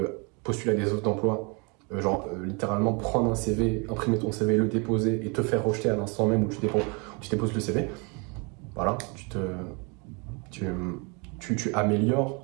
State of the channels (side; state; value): left; quieter; 31.9 dB